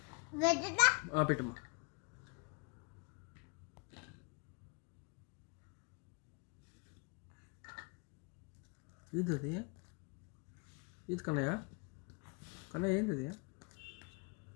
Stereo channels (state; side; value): quieter; right; 30.6 dB